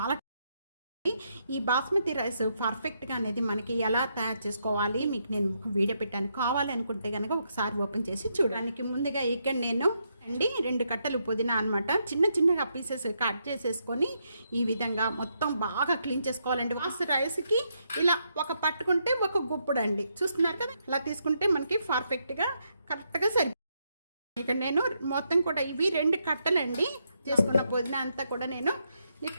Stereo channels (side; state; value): both; inverted; correlation -0.79